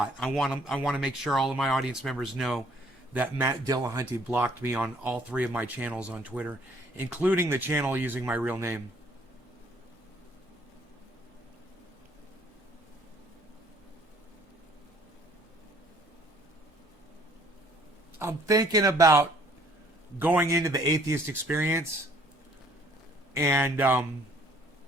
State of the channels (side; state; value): both; normal; correlation 0.60